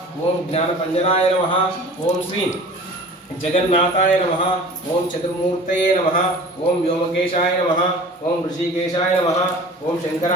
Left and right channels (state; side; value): normal; both; correlation 0.42